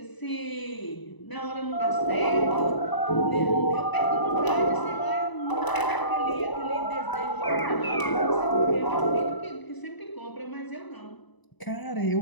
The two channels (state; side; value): late; right; 1.0 ms